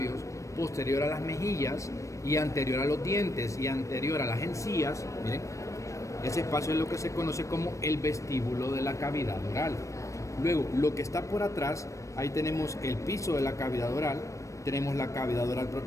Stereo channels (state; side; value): late; right; 0.15 ms